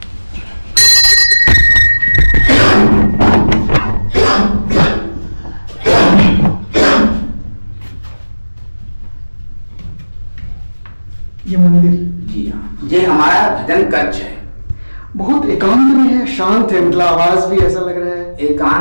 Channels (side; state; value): both; inverted; correlation -1.00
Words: ये मंदिर जी हाँ, ये हमारा भजन कक्ष है। बहुत एकांत में है, शांत है, मतलब आवाज भी ऐसा लग रहा है।